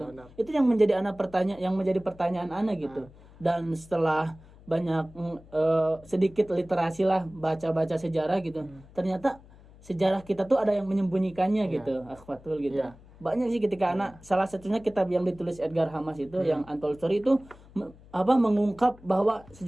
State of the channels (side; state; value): left; noise; hum, 23 dB below the sound